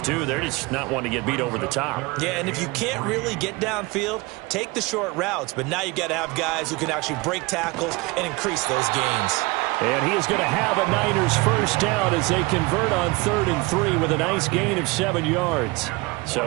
too. They're just not wanting to get beat over the top. Yeah, and if you can't really get downfield, take the short routes. But now you've got to have guys who can actually break tackles and increase those gains. And he is going to have a Niners first down as they convert on 3rd and 3 with a nice gain of 7 yards.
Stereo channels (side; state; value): left; quieter; 24.1 dB